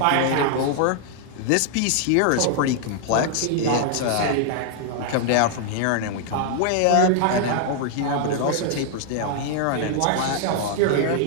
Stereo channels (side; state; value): both; different; correlation 0.00